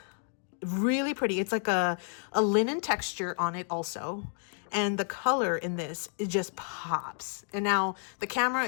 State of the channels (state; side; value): silent; right; 57 dB below the other